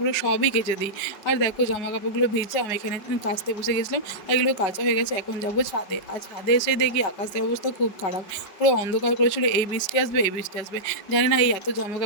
সবই কেচে দিই। আর দেখো জামাকাপড়গুলো ভিজে আমি এখানে কাচতে বসে গেছিলাম। এগুলো কাচা হয়ে গেছে, এখন যাবো ছাদে। আর ছাদে এসে দেখি আকাশের অবস্থা খুব খারাপ। পুরো অন্ধকার করেছিল, এই বৃষ্টি আসবে, এই বৃষ্টি আসবে। জানি না এই এত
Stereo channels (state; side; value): late; right; 5.2 ms